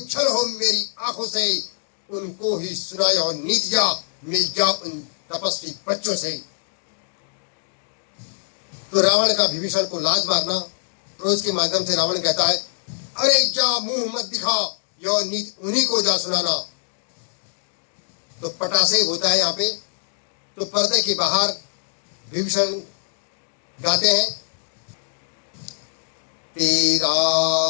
हो मेरी आंखों से, उनको ही सुनाया और नीतियां मिल जा उन तपस्वी बच्चों से। तो रावण का विभीषण को लाज मारना, क्रोध के माध्यम से रावण कहता है, अरे जा मुंह मत दिखा, यह नीति उन्हीं को जा सुनाना। तो पटासे होता है यहाँ पे। तो पर्दे के बाहर विभीषण गाते हैं, तेरा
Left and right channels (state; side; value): silent; right; digital silence